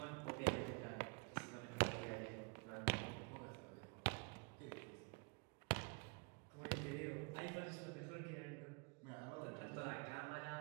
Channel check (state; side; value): quieter; left; 34.2 dB